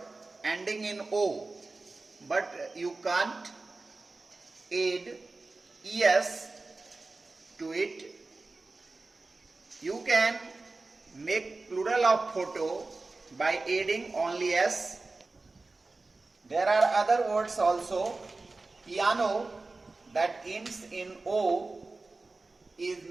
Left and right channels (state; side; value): quieter; left; 3.5 dB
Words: ending in o, but you can't add es to it. You can make plural of photo by adding only s. There are other words also. Piano that ends in o is